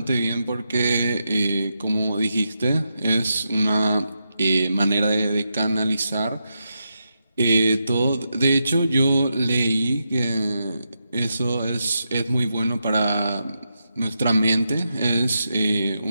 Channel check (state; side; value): inverted; both; correlation -0.85